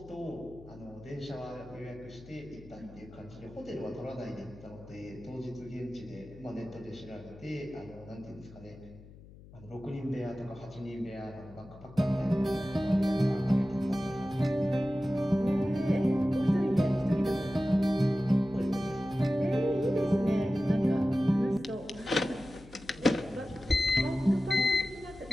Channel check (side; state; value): left; noise; hum, 20 dB below the sound